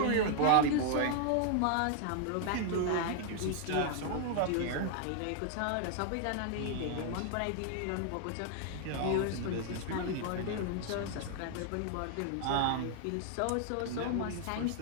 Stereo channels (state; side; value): different; both; correlation 0.00